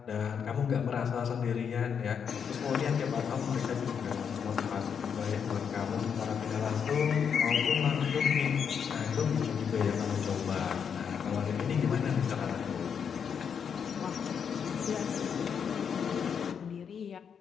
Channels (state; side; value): quieter; right; 7.2 dB